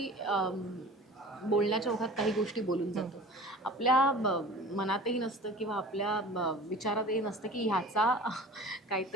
बोलण्याच्या ओघात काही गोष्टी बोलून जातो. आपल्या मनातही नसतं किंवा आपल्या विचारातही नसतं की ह्याचा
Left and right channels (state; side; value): normal; both; correlation 0.41